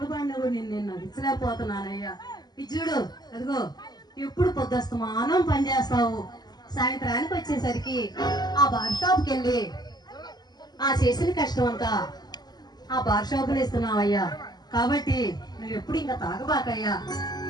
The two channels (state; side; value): late; right; 0.20 ms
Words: పాడినా కూడా నేను నడిచలేకపోతున్నానయ్యా ఇది చూడు అదిగో ఎప్పుడు పొద్దుస్తమానం పని చేస్తావు సాయంత్రానికి వచ్చేసరికి ఆ బార్ షాప్కి వెళ్ళి ఆ చేసిన కష్టం అంతా ఆ బార్ షాపులో ఇస్తున్నావయ్యా కాబట్టి నువ్వు ఎప్పుడు ఇంకా తాగబాకయ్యా